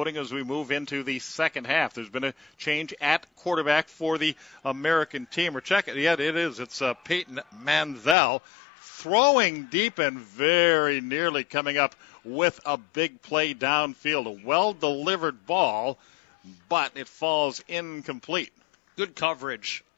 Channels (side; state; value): right; drops out; at 8.2 s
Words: as we move into the second half. There's been a change at quarterback for the American team. We're checking. Yeah, it is. It's Peyton Manziel throwing deep and very nearly coming up with a big play downfield. A well-delivered ball, but it falls incomplete. Good coverage